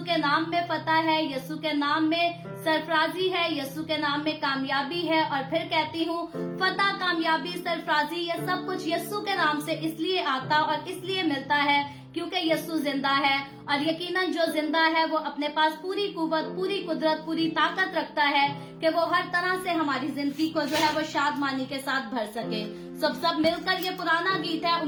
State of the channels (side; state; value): both; identical; correlation 1.00